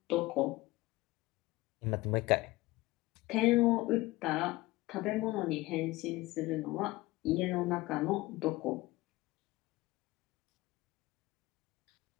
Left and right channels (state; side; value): quieter; right; 19.8 dB